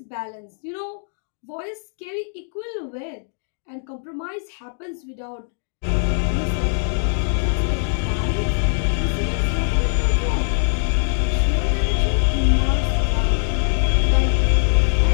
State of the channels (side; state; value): right; silent; digital silence